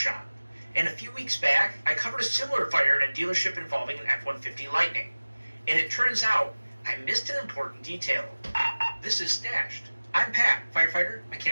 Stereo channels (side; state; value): both; inverted; correlation -1.00